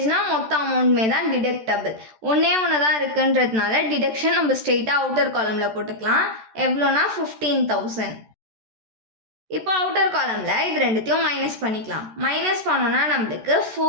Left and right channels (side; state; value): left; late; 13 ms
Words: மொத்த அமௌண்ட்மே தான் டிடக்டபிள். ஒன்று தான் இருக்குன்றதுனால டிடக்ஷன் நம்ம ஸ்ட்ரெயிட்டாக அவுட்டர் காலமில் போட்டுக்கலாம். எவ்வளோனா 15,000. இப்போ அவுட்டர் காலமில் இது ரெண்டுத்தையும் மைனஸ் பண்ணிக்கலாம். மைனஸ் பண்ணோன்னா நம்மளுக்கு